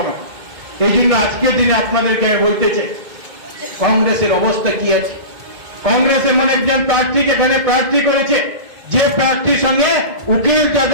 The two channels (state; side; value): late; left; 2.2 ms